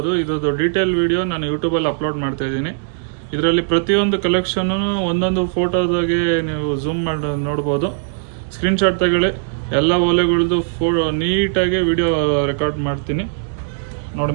ಇದ್ರದ್ದು ಡೀಟೇಲ್ ವಿಡಿಯೋ ನಾನು ಯೂಟ್ಯೂಬಲ್ಲಿ ಅಪ್ಲೋಡ್ ಮಾಡ್ತಾ ಇದ್ದೀನಿ. ಇದರಲ್ಲಿ ಪ್ರತಿಯೊಂದು ಕಲೆಕ್ಷನ್ನು ಒಂದೊಂದು ಫೋಟೋದಾಗೆ ನೀವು ಝೂಮ್ ಮಾಡಿ ನೋಡ್ಬೋದು. ಸ್ಕ್ರೀನ್ಶಾಟ್ ತಗೊಳ್ಳಿ. ಎಲ್ಲ ಓಲೆಗಳದ್ದು ನೀಟಾಗಿ ವಿಡಿಯೋ ರೆಕಾರ್ಡ್ ಮಾಡ್ತೀನಿ ನೋಡಿ.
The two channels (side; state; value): left; silent; digital silence